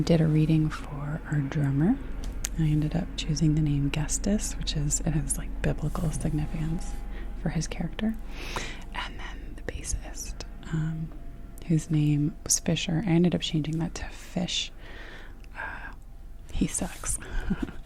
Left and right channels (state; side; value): identical; both; correlation 1.00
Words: a reading for our drummer. I ended up choosing the name Gestus, it has like biblical significance for his character. And then the bassist, whose name was Fisher. I ended up changing that to Fish. He sucks.